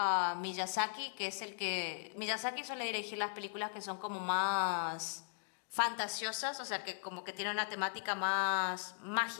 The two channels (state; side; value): silent; right; digital silence